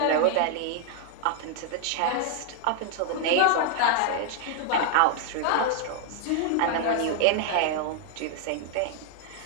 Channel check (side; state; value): both; different; correlation 0.00